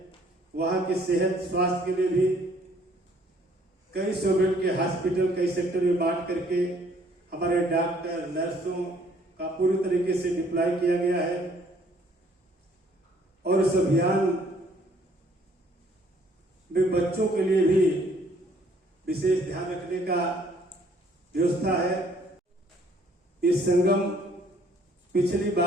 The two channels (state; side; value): normal; both; correlation 0.62